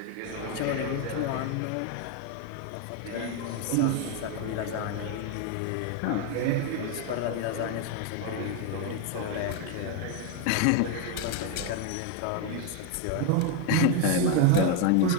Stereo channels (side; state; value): both; different; correlation 0.01